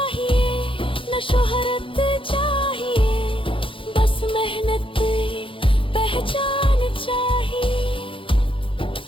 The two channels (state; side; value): late; right; 0.25 ms